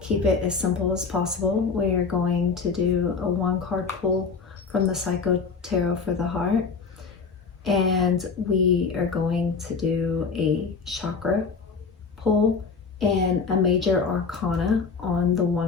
keep it as simple as possible. We are going to do a one-card pull from the Psycho Tarot for the Heart, and we are going to do a chakra pull and a major arcana on the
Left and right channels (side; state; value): right; quieter; 5.1 dB